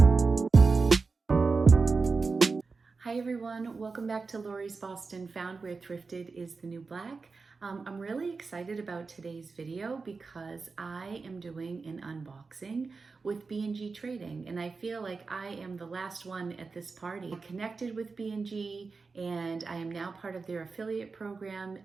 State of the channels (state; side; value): quieter; left; 4.4 dB